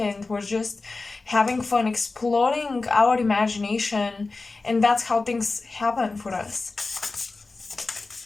we're just having fun, exploring our imagination, and that's how things happen for us.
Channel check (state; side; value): quieter; right; 3.7 dB